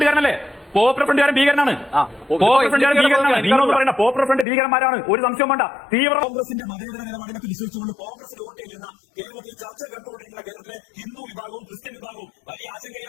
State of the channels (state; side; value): drops out; right; at 4.5 s